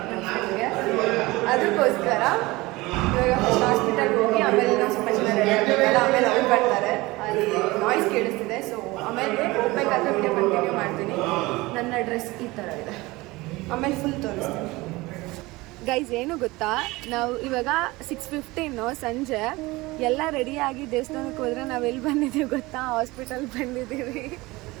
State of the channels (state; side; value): quieter; left; 21.3 dB